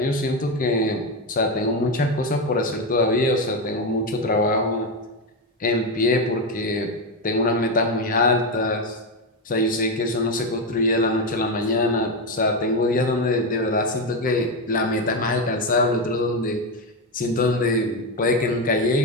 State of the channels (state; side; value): normal; both; correlation 0.11